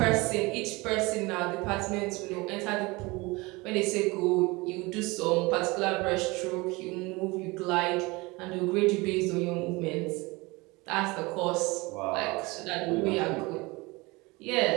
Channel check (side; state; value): left; quieter; 24.0 dB